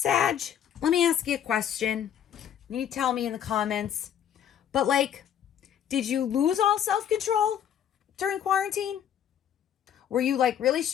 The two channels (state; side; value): quieter; right; 9.5 dB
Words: let me ask you a question. You tell me in the comments, but like, did you lose all self-control during quarantine? Were you like really